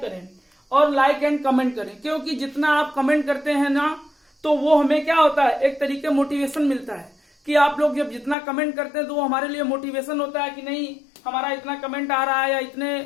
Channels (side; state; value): right; drops out; at 8.3 s